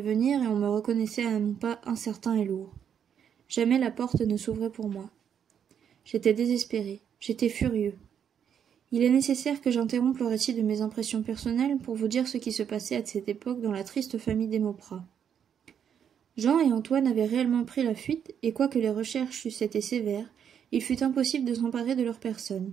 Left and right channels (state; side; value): quieter; left; 8.3 dB